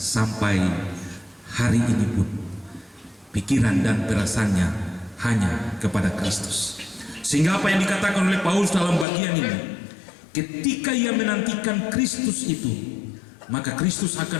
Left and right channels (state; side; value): drops out; right; at 9.1 s